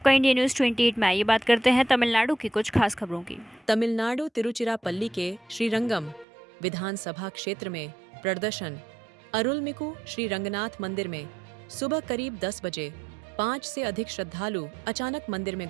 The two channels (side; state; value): left; drops out; at 6.2 s